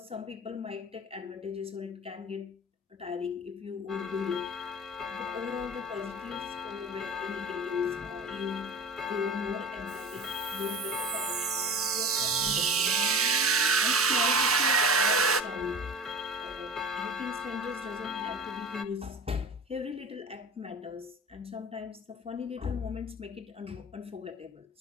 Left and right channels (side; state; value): both; normal; correlation 0.35